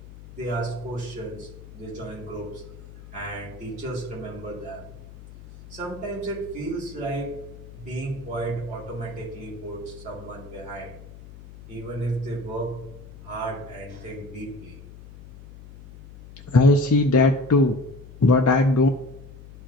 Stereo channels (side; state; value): left; noise; hum, 17 dB below the sound